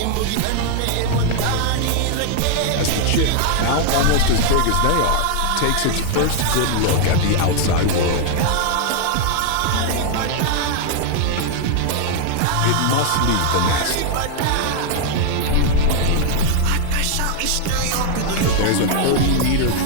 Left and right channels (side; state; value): both; different; correlation 0.00